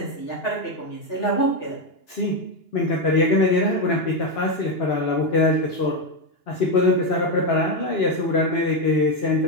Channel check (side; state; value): right; late; 2.9 ms